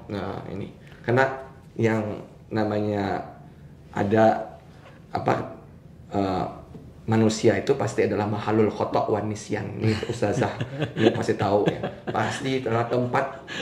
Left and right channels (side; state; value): both; identical; correlation 1.00